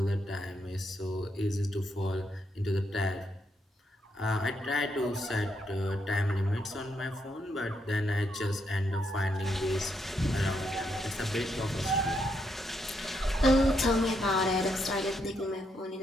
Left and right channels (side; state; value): both; normal; correlation 0.78